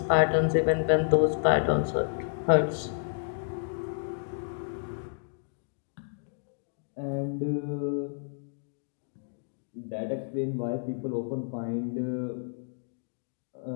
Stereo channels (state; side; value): silent; right; digital silence